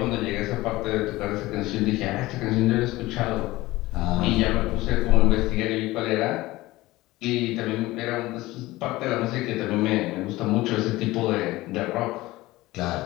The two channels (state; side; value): quieter; right; 18.8 dB